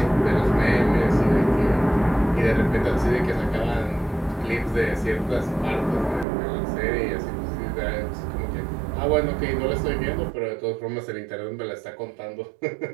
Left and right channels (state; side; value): drops out; left; at 6.2 s